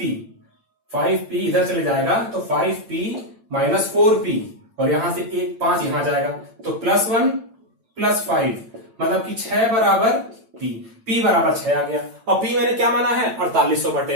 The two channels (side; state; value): left; late; 8.9 ms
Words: 5p इधर चले जाएगा, तो 5p माइनस 4p, और यहां से एक 5 यहां जाएगा, तो +1 + 5, मतलब कि 6 बराबर p बराबर 6 आ गया। और p मैंने क्या माना है, 4800 बटे